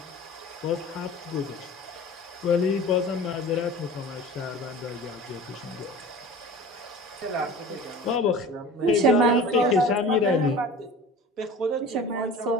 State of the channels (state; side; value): normal; both; correlation 0.39